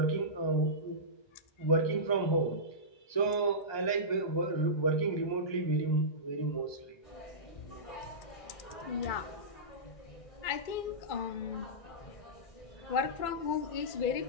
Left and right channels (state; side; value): late; right; 2.2 ms